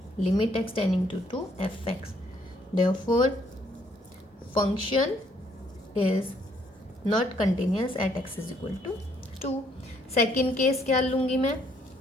limit x tending to fx। therefore function is not continuous at x is equal to 2। Second case क्या लूँगी मैं?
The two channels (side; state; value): both; normal; correlation 0.67